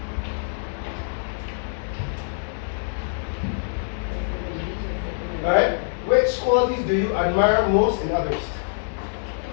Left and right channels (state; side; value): silent; right; 62 dB below the other